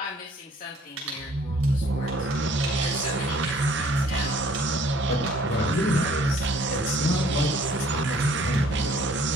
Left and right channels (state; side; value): normal; both; correlation 0.58